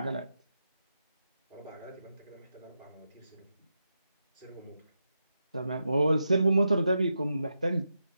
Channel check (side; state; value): both; inverted; correlation -0.86